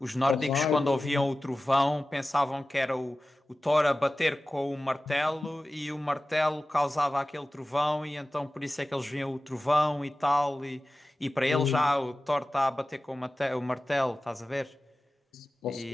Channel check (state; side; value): normal; both; correlation 0.96